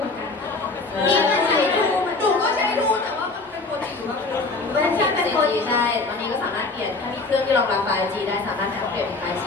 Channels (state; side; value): quieter; right; 3.6 dB